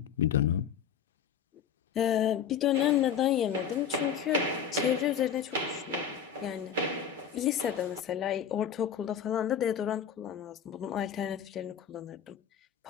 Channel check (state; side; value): quieter; right; 7.9 dB